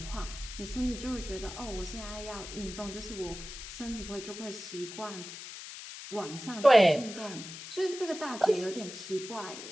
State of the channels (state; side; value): noise; left; hiss, 11 dB below the sound